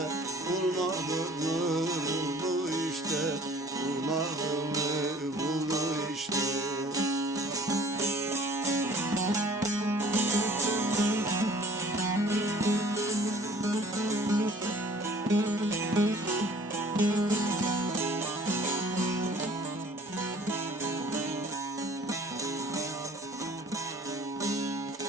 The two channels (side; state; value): both; normal; correlation 0.51